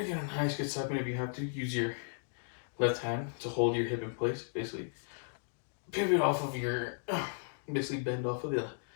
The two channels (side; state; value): right; silent; digital silence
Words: gonna get a nice good side bend. If you have to, use your left hand to hold your hip in place. Basically, pivot off of your, basically bend off of